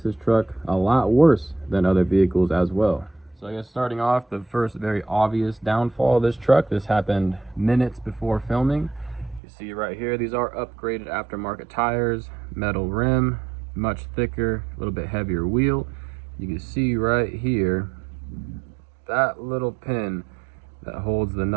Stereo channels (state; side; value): drops out; left; at 9.4 s